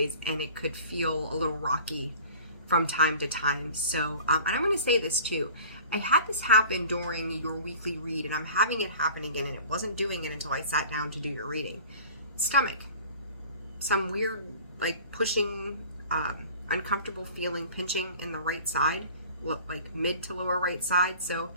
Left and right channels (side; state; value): both; inverted; correlation -0.44